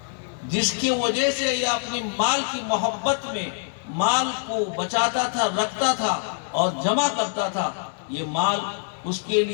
جس کی وجہ سے یہ اپنی مال کی محبت میں مال کو بچاتا تھا, رکھتا تھا اور جمع کرتا تھا, یہ مال اس کے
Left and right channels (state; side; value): silent; right; digital silence